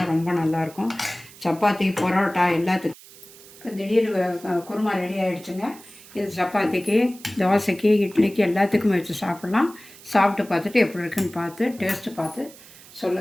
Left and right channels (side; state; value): right; noise; hiss, 21 dB below the sound